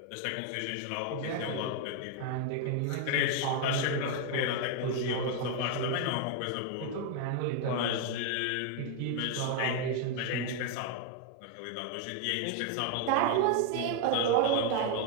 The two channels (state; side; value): different; both; correlation 0.01